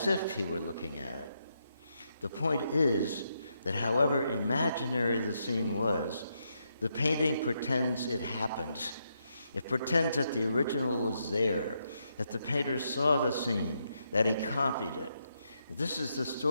if he were looking at it. The point is that however imaginary the scene was, the painting pretends it happened. It pretends that the original was there, that the painter saw the scene, that he copied it. This is the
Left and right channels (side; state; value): both; inverted; correlation -0.80